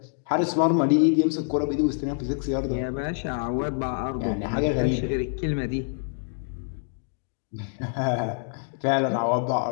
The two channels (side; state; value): right; silent; digital silence